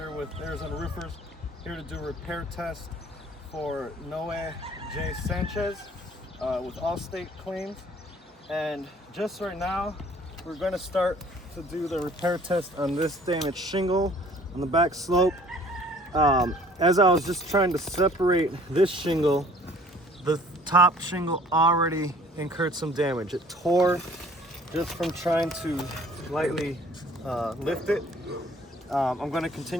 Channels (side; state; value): both; normal; correlation 0.53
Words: with Arizona Roofers, here to do a repair test for Noe J. Sanchez with Allstate claims. And just right now, we're going to start to do the repair test on this damaged shingle on the back slope. As I was just trying to separate this shingle, the top shingle already incurred some damage. It tore just from trying to lightly lift it. I'm going to